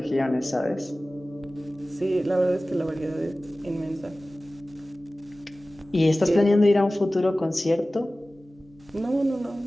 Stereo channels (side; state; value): both; normal; correlation 0.97